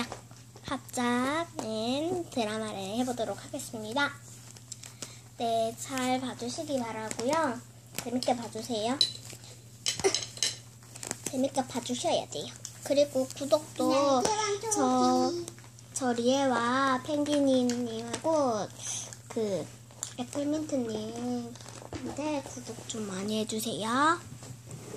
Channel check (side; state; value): both; identical; correlation 1.00